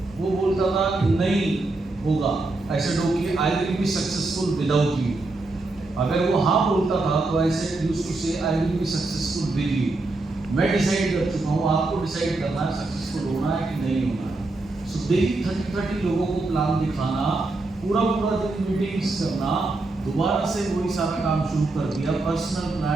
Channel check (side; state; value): left; quieter; 3.2 dB